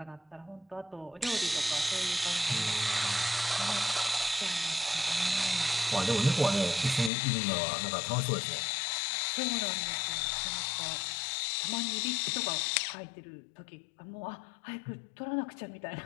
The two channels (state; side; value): drops out; right; at 7.1 s